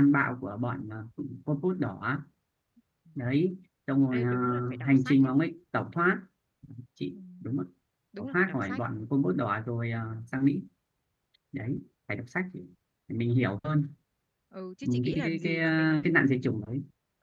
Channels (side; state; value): both; identical; correlation 1.00